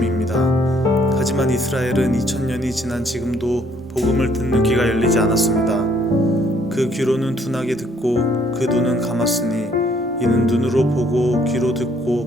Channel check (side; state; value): both; normal; correlation 0.64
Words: 하지만 이스라엘은 2000년이 지난 지금도 복음을 듣는 귀가 열리지 않았습니다. 그 귀로는 둔하게 듣고 그 눈은 감았으니 이는 눈으로 보고 귀로